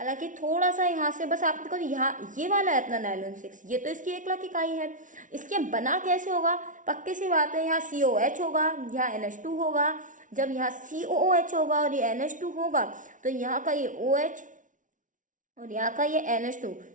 थोड़ा सा यहाँ से बस आपको, यहाँ ये वाला है अपना नाइलॉन 6, ये तो इसकी 1 लाख इकाई है। इसके बना कैसे होगा, पक्की सी बात है, यहाँ COH होगा, यहाँ NH2 होगा। जब यहाँ COOH होगा और ये NH2 होगा तो यहाँ का ये OH और यहाँ का ये NH2,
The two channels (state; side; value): late; left; 0.37 ms